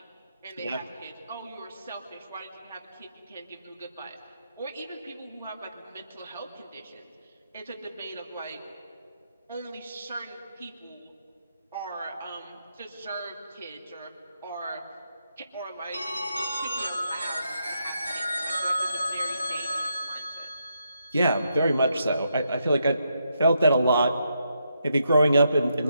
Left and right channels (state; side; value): inverted; both; correlation -0.81